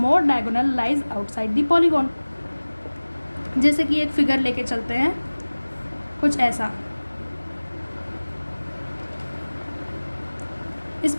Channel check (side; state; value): both; inverted; correlation -1.00